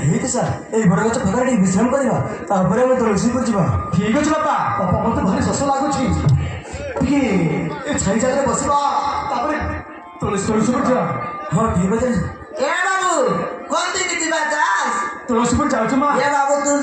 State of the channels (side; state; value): both; identical; correlation 1.00